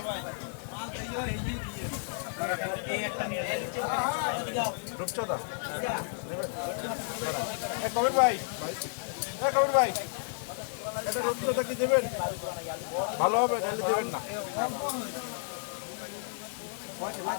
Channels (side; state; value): right; silent; digital silence